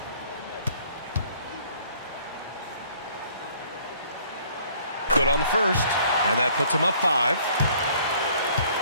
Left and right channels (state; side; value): inverted; both; correlation -0.59